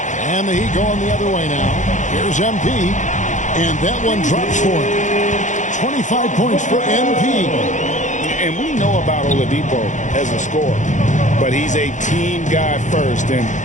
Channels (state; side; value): late; right; 0.36 ms